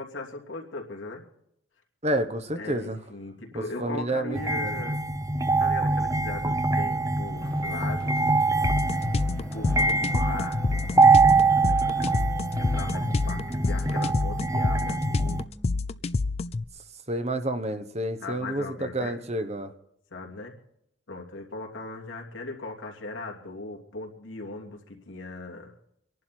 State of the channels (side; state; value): both; normal; correlation 0.61